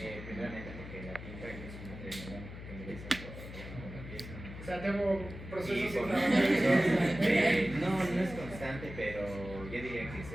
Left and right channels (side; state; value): left; noise; hum, 12 dB below the sound